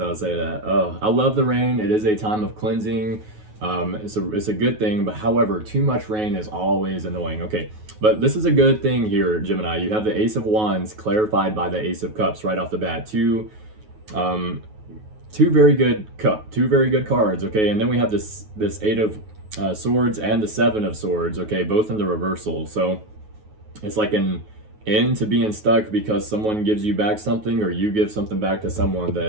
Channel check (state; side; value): late; left; 9.4 ms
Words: would say that. I love the rain. It is a time of cleansing. It's a good thing, but however, too much rain is always annoying. Okay, but this is a good thing here, Gemini. You have the Ace of Wands clarified by the Ace of Cups right off the bat. Two very good cards. Okay, and then we have this 8 of Swords and the 7 of Swords. Okay, both in the reversal. So it's like an into being stuck because someone gives you back something or you give something back to someone